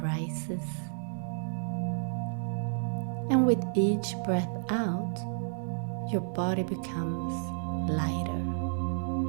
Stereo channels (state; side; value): silent; left; digital silence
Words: rises. And with each breath out, your body becomes lighter.